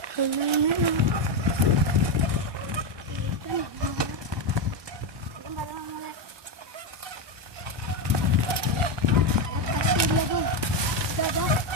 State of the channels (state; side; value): late; left; 1.2 ms